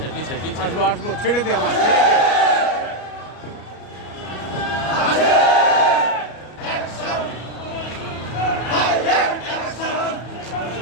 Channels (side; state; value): right; late; 34 ms